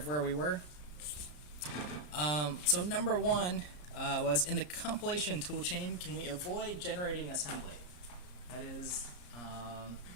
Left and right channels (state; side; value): late; right; 34 ms